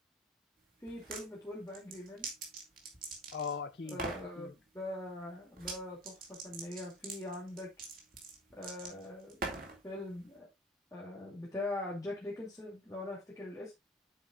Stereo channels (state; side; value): normal; both; correlation 0.40